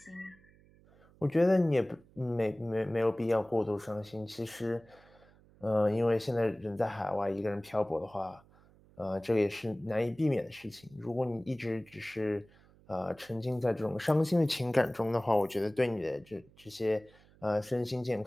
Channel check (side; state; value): right; noise; hum, 27 dB below the sound